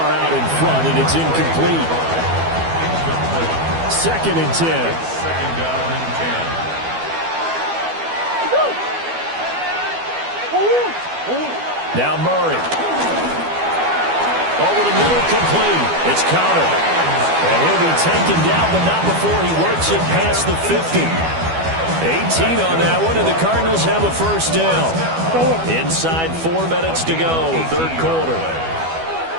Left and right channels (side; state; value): left; late; 12 ms